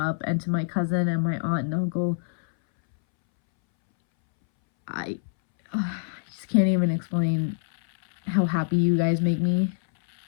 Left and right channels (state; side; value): silent; right; 62 dB below the other